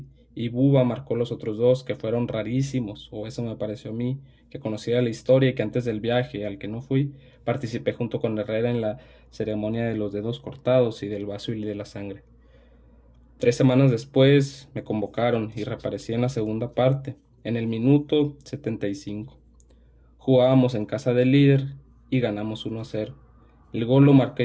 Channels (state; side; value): identical; both; correlation 1.00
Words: y Buba marcó los otros dos que fueron rarísimos, o eso me pareció a mí, que conocía la historia y que antes del viaje al que no fui, participé junto con Herrera en la ceremonia de los dedos cortados y del vaso y de la sangre. 3 semanas después me convocaron y reaparecí en la segunda parte, en el minuto 75. Jugábamos en casa del líder y ganamos 1-0. El gol lo